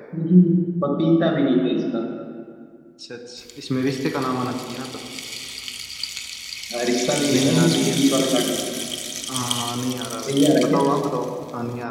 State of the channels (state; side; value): identical; both; correlation 1.00